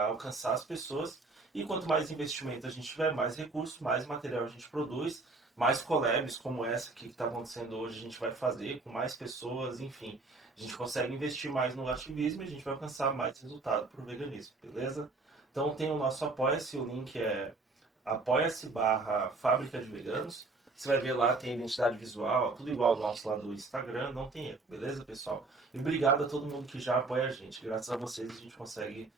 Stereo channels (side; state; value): left; quieter; 3.6 dB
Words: alcançar as pessoas. E quanto mais investimento a gente tiver, mais recursos, mais material a gente produz, mais collabs como essa que está acontecendo hoje a gente vai fazer com mais pessoas, enfim. A gente consegue investir mais no ativismo e a gente vai alcançar mais resultado para o veganismo, beleza? Então tem o nosso Apoia-se, o link é apoia-se/Fábrica de Veganos. Você vai ver lá, tem identidade visual, tudo igual ao nosso lá do Instagram, não tem erro, beleza, pessoal? E obrigado a todo mundo que já apoia a gente. Graças a vocês a gente consegue